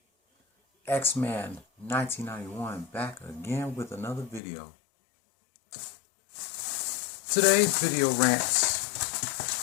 X-Man 1991 back again with another video. Today's video rants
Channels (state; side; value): drops out; right; at 4.4 s